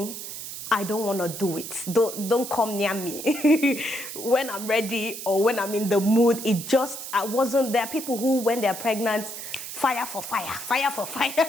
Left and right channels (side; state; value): right; noise; hiss, 9 dB below the sound